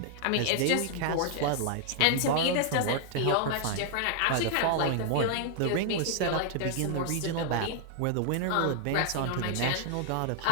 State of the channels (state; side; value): different; both; correlation -0.01